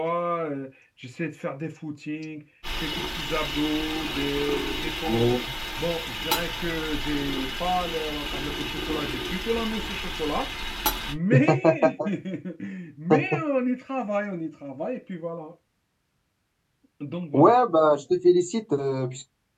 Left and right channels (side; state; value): both; identical; correlation 1.00